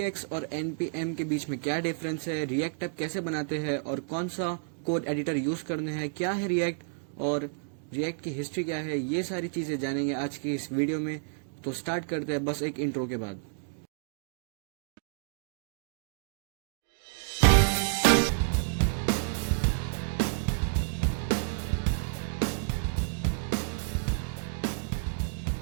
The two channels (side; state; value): left; silent; digital silence